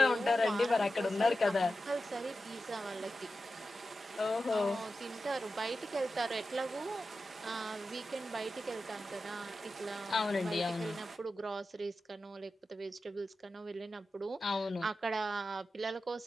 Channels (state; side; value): normal; both; correlation 0.92